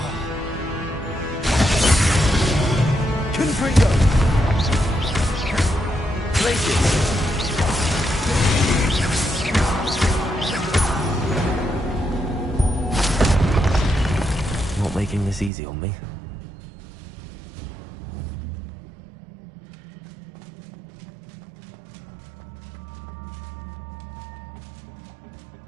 Confringo. Glacis. Not making this easy on me.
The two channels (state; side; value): drops out; left; at 15.5 s